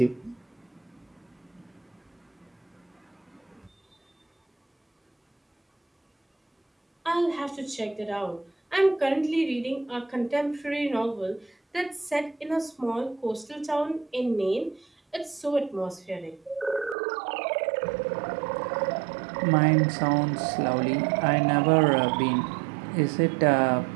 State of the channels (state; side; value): drops out; left; at 16.9 s